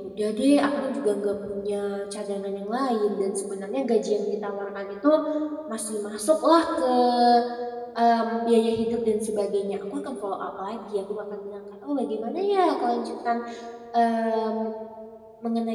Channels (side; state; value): both; identical; correlation 1.00